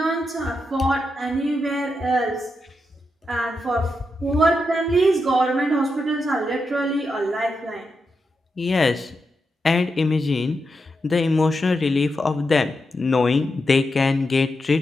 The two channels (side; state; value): both; normal; correlation 0.86